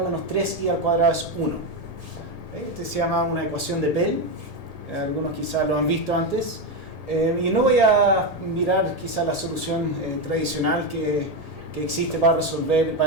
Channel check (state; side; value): late; right; 1.8 ms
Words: menos 3y al cuadrado es 1. ¿Okay? Este se llama una ecuación de Pell. Algunos quizás lo han visto antes. Y no voy a mirar quizás la solución tradicional que existe para